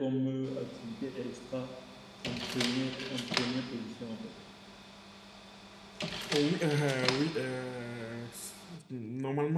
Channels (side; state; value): both; identical; correlation 1.00